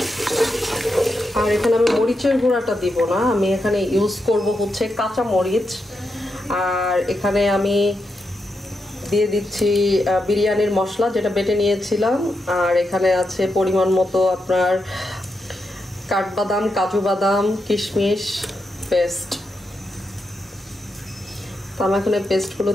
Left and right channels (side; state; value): both; normal; correlation 0.85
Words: আর এখানে আমি মরিচের গুঁড়াটা দিব না, আমি এখানে ইউজ করব হচ্ছে কাঁচা মরিচ। আর এখানে আমি দিয়ে দিচ্ছি বিরিয়ানির মশলা যেটা বেটে নিয়েছিলাম। আর এখানে আছে পরিমাণ মতো আপনার কাঠবাদাম, কাজু বাদাম, কিশমিশ পেস্ট। তো আমি এখন এই পেস্টগুলো